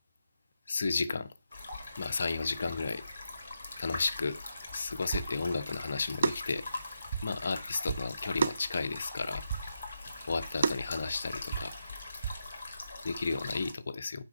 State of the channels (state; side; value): inverted; both; correlation -0.85